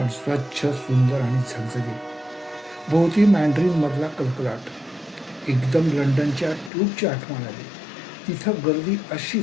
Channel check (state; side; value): drops out; right; at 6.7 s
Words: स्वच्छ, सुंदर आणि झगझगीत. भोवती मॅन्ड्रिनमधला कलकलाट. एकदम लंडनच्या ट्यूबची आठवण आली. तिथं गर्दी